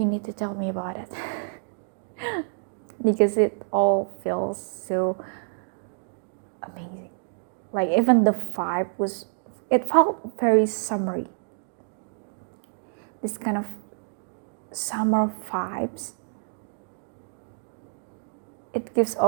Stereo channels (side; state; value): left; silent; digital silence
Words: need to tell me about it. Because it all feels so amazing. Like even the vibe was, it felt very summery. this kind of summer vibes. It gives